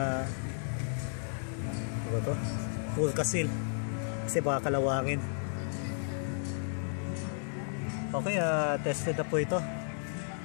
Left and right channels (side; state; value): right; silent; digital silence